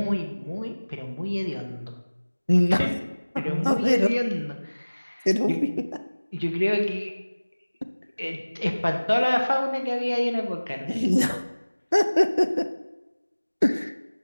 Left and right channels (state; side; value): inverted; both; correlation -1.00